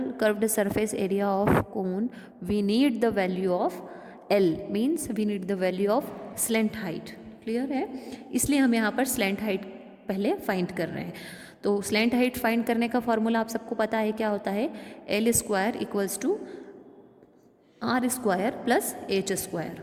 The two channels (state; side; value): identical; both; correlation 1.00